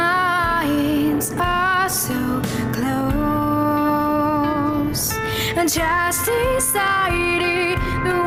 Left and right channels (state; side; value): identical; both; correlation 1.00